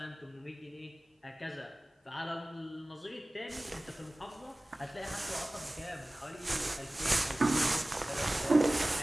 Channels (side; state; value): both; normal; correlation 0.98